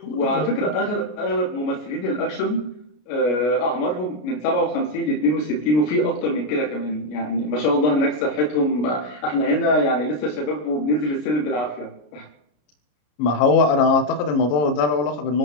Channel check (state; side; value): late; right; 33 ms